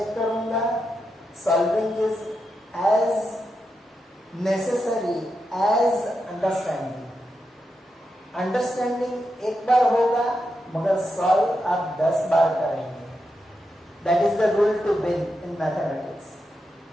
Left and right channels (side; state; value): both; normal; correlation 0.86